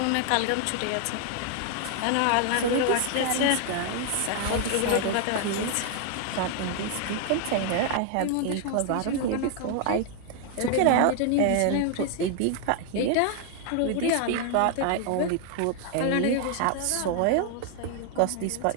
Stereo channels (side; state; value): both; different; correlation 0.00